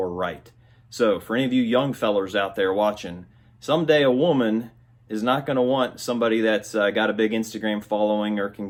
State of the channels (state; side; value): identical; both; correlation 1.00